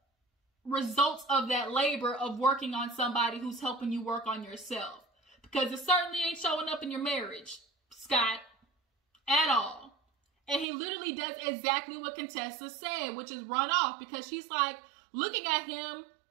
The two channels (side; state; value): left; drops out; at 10.7 s